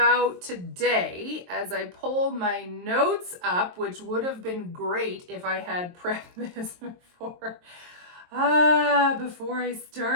today, as I pull my notes up, which would have been great if I had prepped this before I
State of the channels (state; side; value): late; left; 23 ms